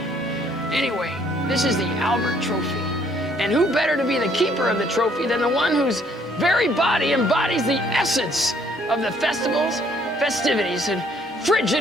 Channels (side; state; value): both; normal; correlation 0.64